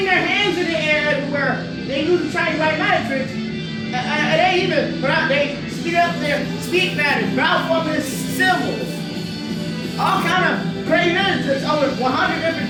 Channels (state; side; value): identical; both; correlation 1.00